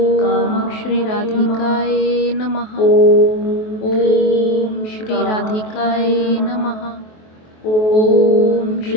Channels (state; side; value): late; right; 23 ms